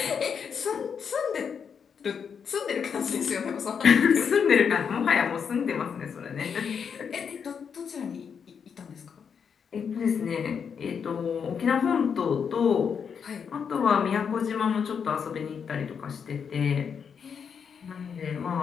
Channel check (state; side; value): quieter; right; 6.8 dB